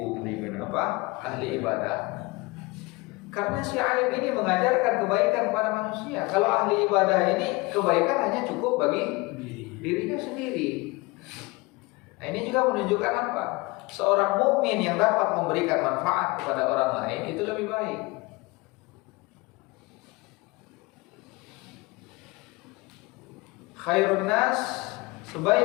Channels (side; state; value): right; quieter; 24.0 dB